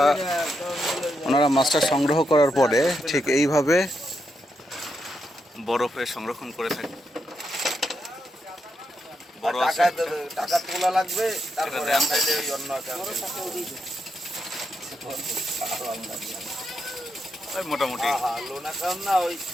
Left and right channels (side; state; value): both; normal; correlation 0.83